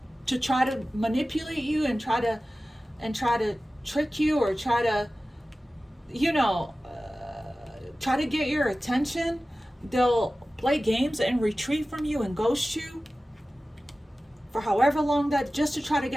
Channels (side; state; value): both; normal; correlation 0.96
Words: to try to manipulate you and try to trick you, or try to, you know, try to get your attention. They'll play games and retreat from you and ghost you for however long, that just to try to